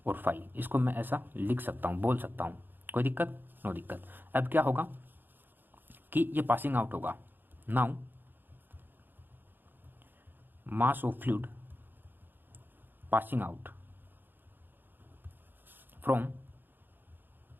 और फाई, इसको मैं ऐसा लिख सकता हूँ, बोल सकता हूँ, कोई दिक्कत, नो दिक्कत। अब क्या होगा कि ये पासिंग आउट होगा। Now mass of fluid passing out from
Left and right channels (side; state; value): left; late; 0.093 ms